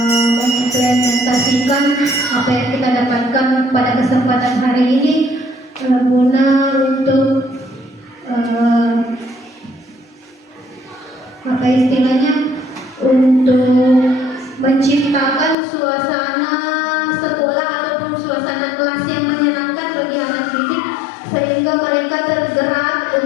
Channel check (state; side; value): drops out; right; at 15.6 s